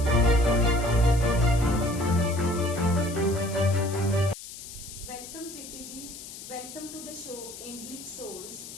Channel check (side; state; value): left; noise; hiss, 13 dB below the sound